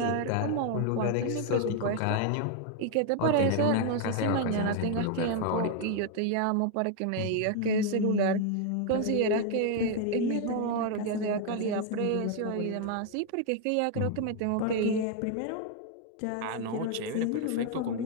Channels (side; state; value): both; different; correlation 0.00